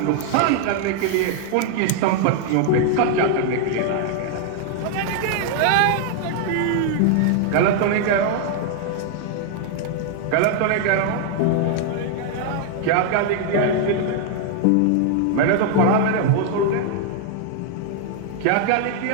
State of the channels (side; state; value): both; different; correlation 0.00